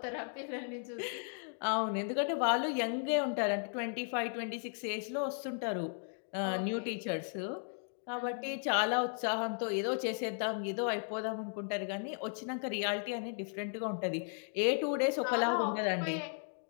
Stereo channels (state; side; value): silent; right; 54 dB below the other